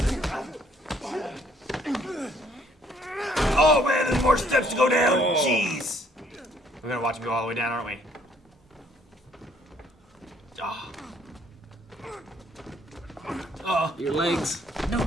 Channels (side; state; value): both; normal; correlation 0.64